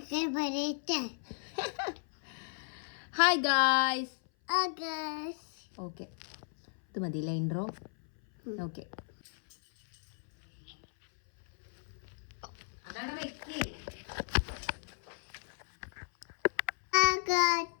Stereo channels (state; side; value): silent; right; 55 dB below the other